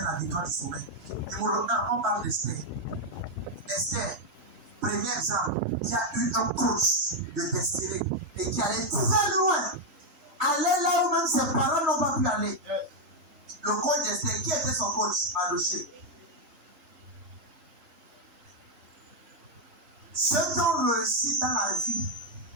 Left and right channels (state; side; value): late; left; 3.3 ms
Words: la victoire du sommet. Numéro 1, on parle d'Esther. Esther, premier exemple, qui a eu un coach de destinée et qui allait très loin. Aller là où même ses parents n'ont pas pu aller. Le coach d'Esther, qui était son coach? Mardochée. Ceux qui ont réussi dans la vie